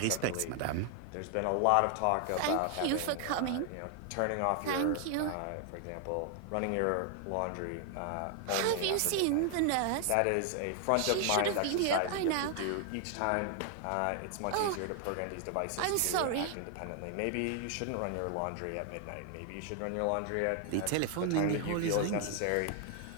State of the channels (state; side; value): different; both; correlation 0.00